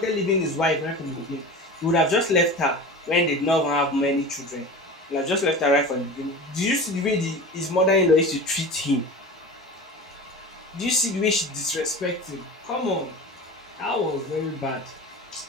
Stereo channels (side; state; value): both; normal; correlation 0.33